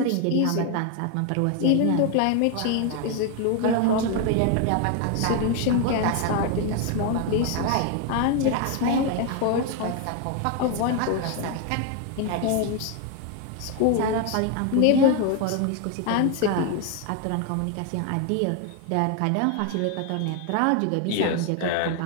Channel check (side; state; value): both; different; correlation 0.01